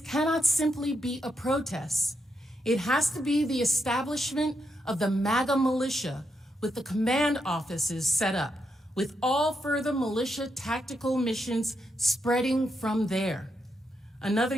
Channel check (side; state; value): both; normal; correlation 0.82